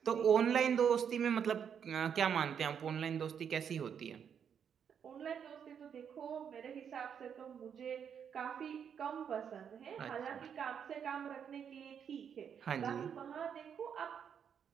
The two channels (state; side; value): quieter; left; 7.8 dB